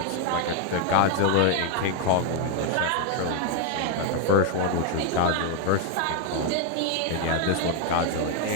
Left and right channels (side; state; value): both; different; correlation 0.01